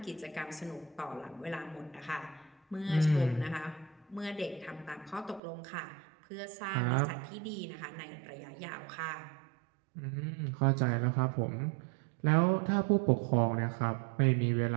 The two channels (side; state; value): left; drops out; at 5.4 s